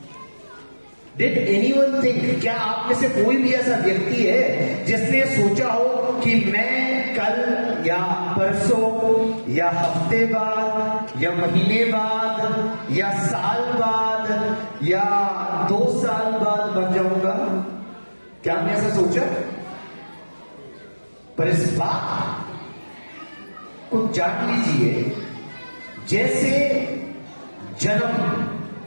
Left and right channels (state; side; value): inverted; both; correlation -1.00